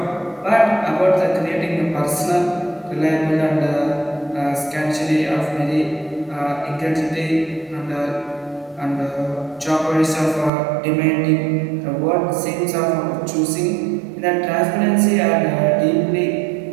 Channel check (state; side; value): drops out; left; at 10.5 s